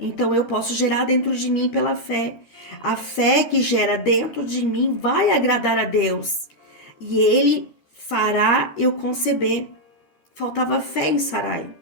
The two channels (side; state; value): right; late; 13 ms